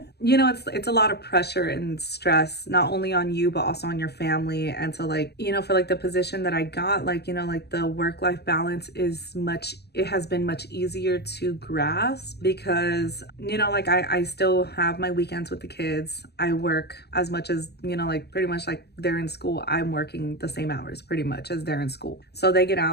You know, it's a lot of pressure and stress, not only on you, but also on your family. And so, like, you know, for like the position that I got, like, you know, like the work-life balance it has been much easier to grasp, because, you know, like I still have my weekends with the kids. I work as much as, you know, like pretty much like they're in school. I'm working the same hours pretty much as they're in school. So they get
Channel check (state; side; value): late; right; 0.48 ms